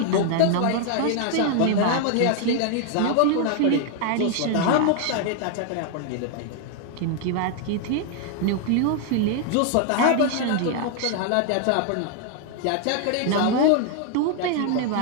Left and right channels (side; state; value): both; different; correlation 0.00